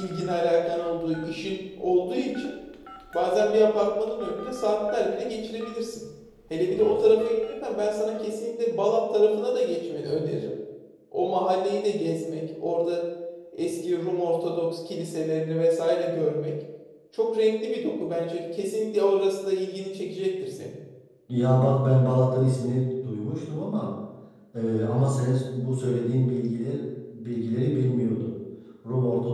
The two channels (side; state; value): both; identical; correlation 1.00